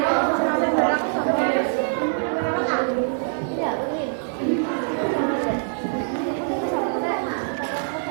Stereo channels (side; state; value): left; silent; digital silence